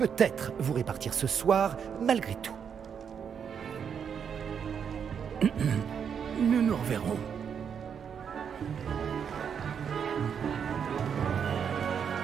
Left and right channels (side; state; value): left; quieter; 7.4 dB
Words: vous répartir ce soir, malgré tout. Nous nous reverrons.